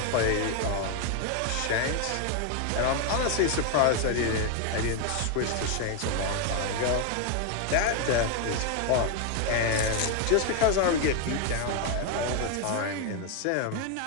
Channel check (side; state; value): both; different; correlation 0.01